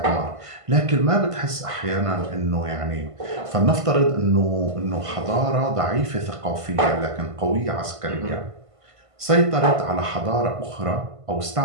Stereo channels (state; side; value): late; left; 1.5 ms